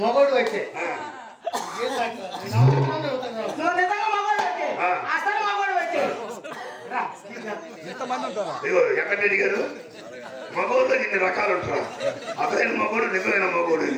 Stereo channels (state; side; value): identical; both; correlation 1.00